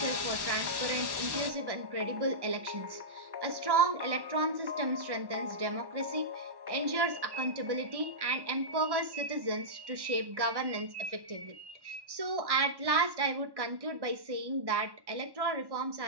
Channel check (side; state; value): left; late; 1.1 ms